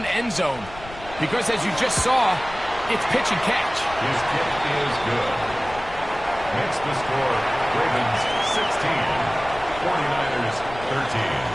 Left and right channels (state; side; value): noise; left; rumble, 16 dB below the sound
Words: end zone because, as you just saw, it's pitch and catch. His kick is good. Makes the score Ravens 16, 49ers 13.